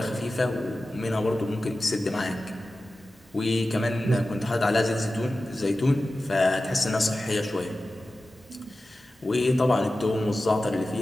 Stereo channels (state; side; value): normal; both; correlation 0.94